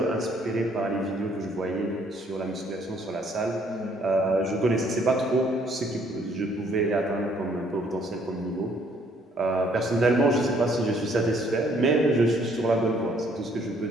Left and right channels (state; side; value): normal; both; correlation 0.64